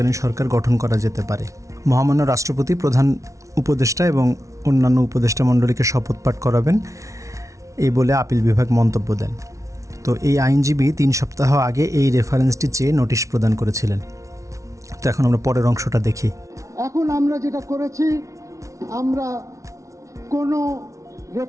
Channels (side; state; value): left; late; 0.15 ms